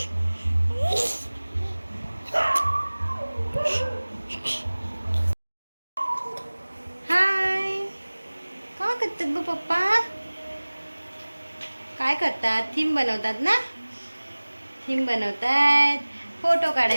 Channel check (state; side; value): inverted; both; correlation -1.00